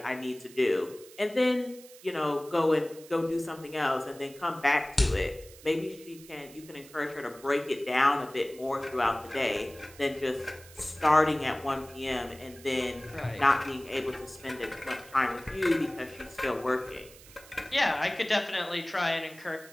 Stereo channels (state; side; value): noise; right; hiss, 21 dB below the sound